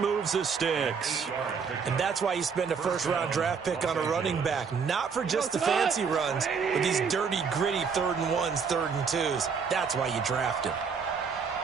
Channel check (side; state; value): left; quieter; 5.9 dB